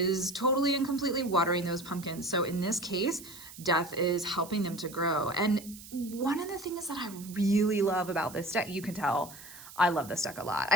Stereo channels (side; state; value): right; noise; hiss, 16 dB below the sound